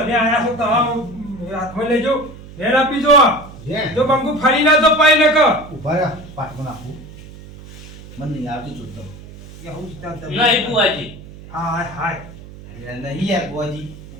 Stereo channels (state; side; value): noise; right; hum, 17 dB below the sound